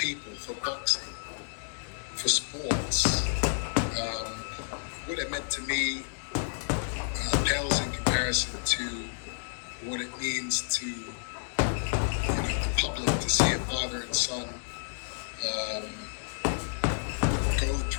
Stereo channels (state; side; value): silent; right; digital silence